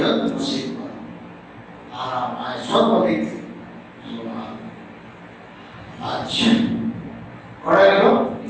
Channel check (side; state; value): both; identical; correlation 1.00